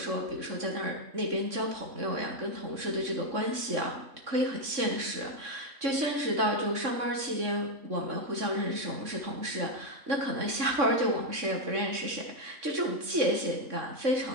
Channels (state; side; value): late; left; 3.6 ms